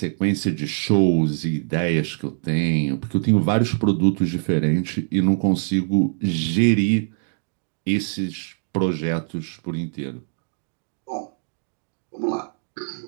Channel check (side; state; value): left; silent; digital silence